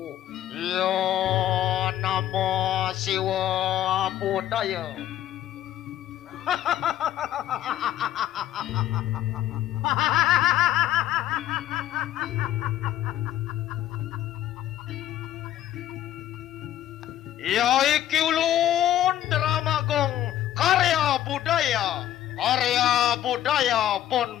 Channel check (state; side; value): quieter; right; 12.4 dB